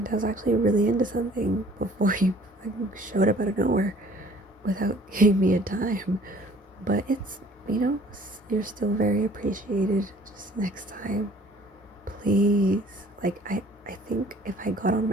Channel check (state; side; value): normal; both; correlation 0.54